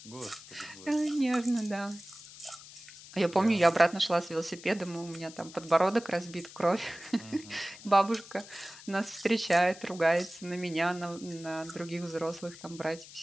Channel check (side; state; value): left; noise; hiss, 17 dB below the sound